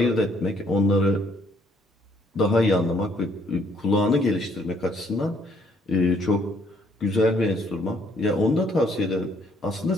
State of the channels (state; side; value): normal; both; correlation 0.66